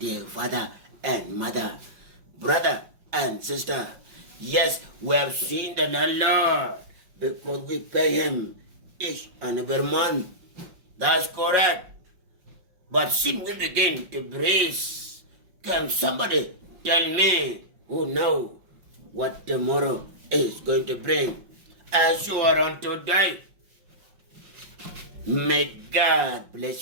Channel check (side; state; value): left; late; 5.5 ms